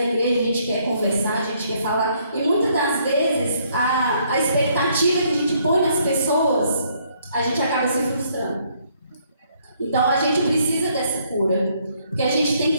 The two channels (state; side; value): inverted; both; correlation -0.68